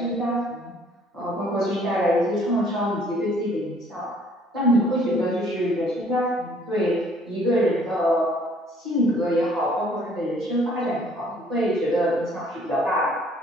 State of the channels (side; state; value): both; normal; correlation 0.59